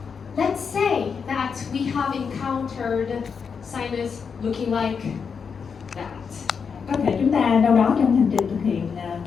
Let's say that we have encountered sinus looking like that. Có thể chúng ta đâu đó trong hành trình thực hiện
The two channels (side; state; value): right; quieter; 6.1 dB